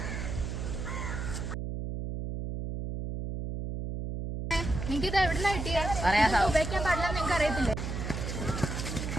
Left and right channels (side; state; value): right; noise; hum, 4 dB below the sound